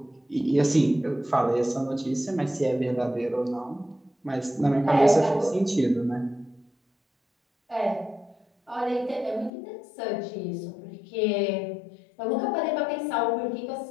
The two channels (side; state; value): right; drops out; at 9.5 s